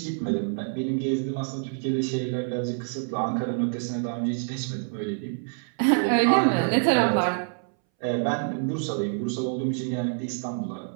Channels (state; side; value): silent; left; 60 dB below the other